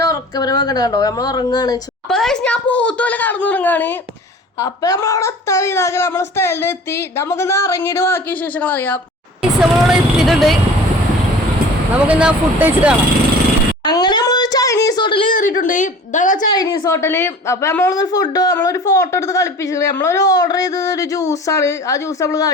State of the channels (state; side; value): normal; both; correlation 0.43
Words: ഉറക്കപരമൊക്കെ കണ്ടോ. നമ്മൾ ഉറങ്ങാണ്. അപ്പൊ ഞാൻ പോത്തുപോലെ കടന്നുറങ്ങാണ്. അപ്പൊ നമ്മളവിടെ എത്താൻ ഇതാക്കി നമ്മളെ സ്ഥലത്ത് എത്തി. നമുക്കിന്ന് ഇറങ്ങിയിട്ട് ബാക്കി വിശേഷങ്ങൾ അറിയാം. നമ്മളവിടെ എത്തിയിട്ടുണ്ട്. നമുക്കിന്ന് ഫുഡ് കഴിച്ചിട്ട് കാണാം. അങ്ങനെ നമ്മളൊരു ചൈനീസ് ഹോട്ടലിൽ കയറിയിട്ടുണ്ട്. ഇതാണ് ചൈനീസ് ഹോട്ടല്. അപ്പൊ നമ്മളൊരു ഫോട്ടോ എടുത്ത് കളിപ്പിച്ചിട്ടുണ്ട്. നമ്മളൊരു ഓർഡർ ചെയ്തത് ഒരു ജ്യൂസാണ്. ആ ജ്യൂസ് നമ്മൾ